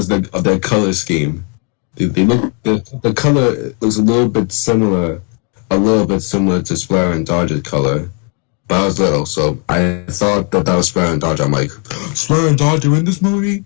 of their color scheme. They look the color looks a little bit similar to Splatter and Dodge's color. But I was little, so I thought that was Splatter and Dodge. I'm like, Splatter and Dodge are in this movie?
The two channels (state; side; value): quieter; right; 35.6 dB